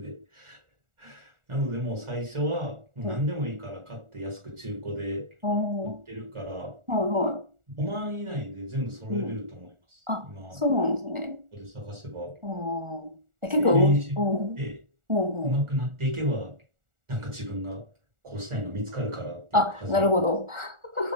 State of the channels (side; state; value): left; late; 1.4 ms